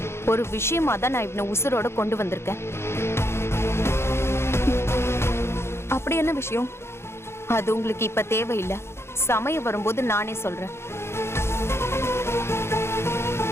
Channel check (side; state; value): right; late; 0.12 ms